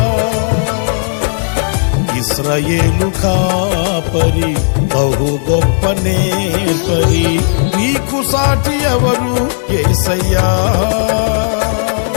ఇశ్రాయేలు కాపరి బహు గొప్ప నేర్పరి, నీకు సాటి ఎవరు యేసయ్యా.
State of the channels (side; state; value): right; silent; digital silence